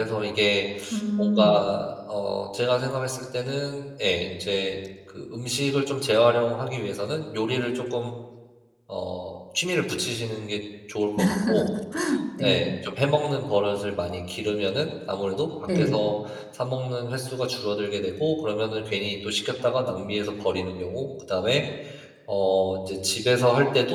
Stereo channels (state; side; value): identical; both; correlation 1.00